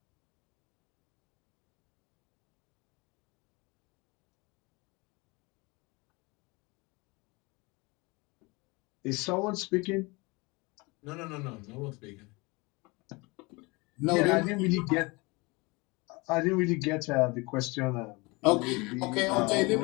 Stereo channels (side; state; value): right; quieter; 26.0 dB